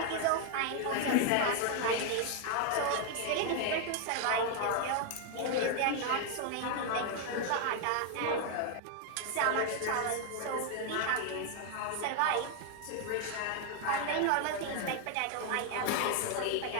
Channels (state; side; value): different; both; correlation 0.00